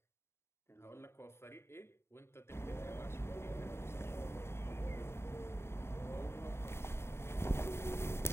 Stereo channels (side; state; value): right; late; 0.12 ms